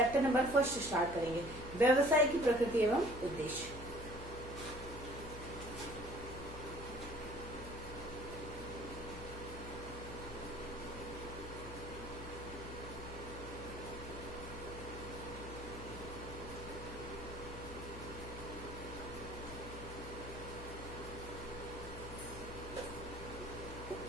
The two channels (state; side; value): noise; left; hum, 10 dB below the sound